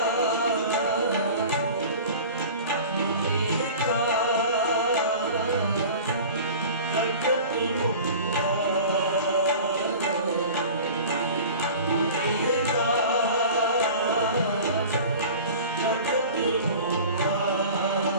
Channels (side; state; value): both; inverted; correlation -0.39